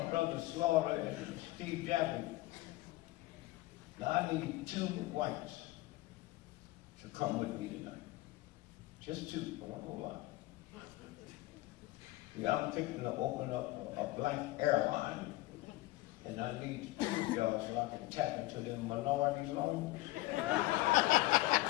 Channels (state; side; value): quieter; right; 18.6 dB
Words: brother Slaughter and Steve Jackson. Now I need 2 whites to come with me tonight. Just 2, not a whole lot. Yeah, I'm thinking of opening up a black airline, and I need 2 of y'all so I can tap into them minority loans.